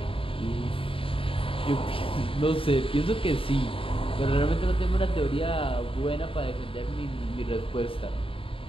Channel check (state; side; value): late; right; 0.26 ms